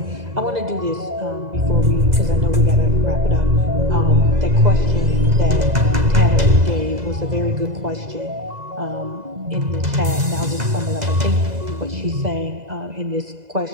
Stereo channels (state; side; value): late; left; 2.0 ms